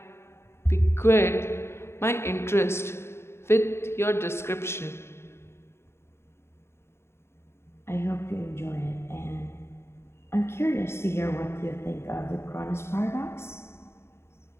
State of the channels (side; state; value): right; late; 0.12 ms